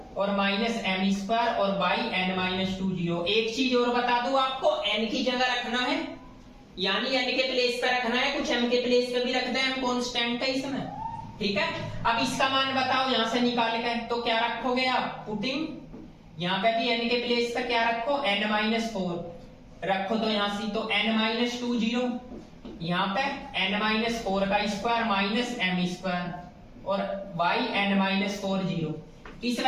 और माइनस एम स्क्वायर और बाई एन माइनस 2 जीरो। एक चीज और बता दूं आपको, एन की जगह रखना है, यानी एन के प्लेस पे रखना है, कुछ एम के प्लेस पे भी रखते हैं, एम कांस्टेंट है इसमें, ठीक है। अब इसका मान बताओ यहां से निकाल के, तो क्या रखोगे आप, पुटिंग यहाँ पे भी एन के प्लेस पे क्या रखो, एन माइनस 4 रखो, तो यहां से तो एन माइनस 2 जीरो, यहाँ पे एन माइनस 4 का स्क्वायर माइनस एम स्क्वायर और बाई एन माइनस 4 जीरो। इस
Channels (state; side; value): identical; both; correlation 1.00